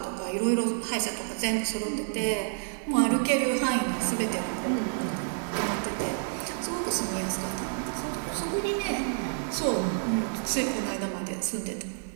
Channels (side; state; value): left; silent; digital silence